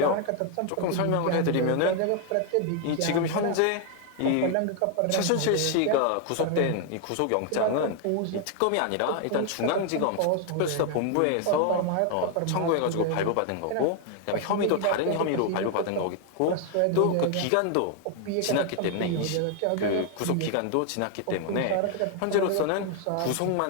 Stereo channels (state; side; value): different; both; correlation 0.00